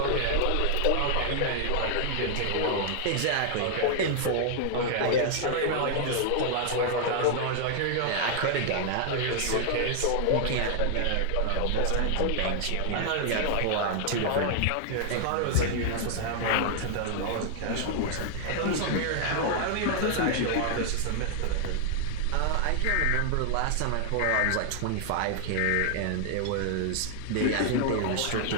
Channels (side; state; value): both; different; correlation 0.00